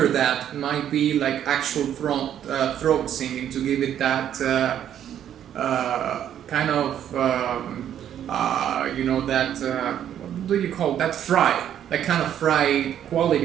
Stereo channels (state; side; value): quieter; left; 10.2 dB